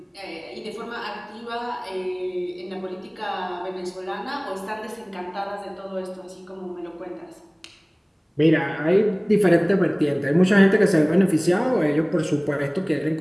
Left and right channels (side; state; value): both; identical; correlation 1.00